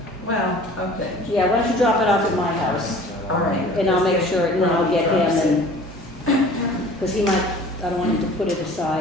Well, okay, Yeah, why don't you drop it off at my house? all right. And I'll make sure, and then I'll get Drops it. him and, because he might, I don't want him to put it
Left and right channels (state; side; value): normal; both; correlation 0.46